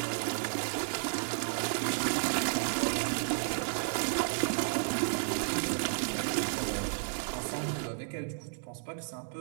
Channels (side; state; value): left; silent; digital silence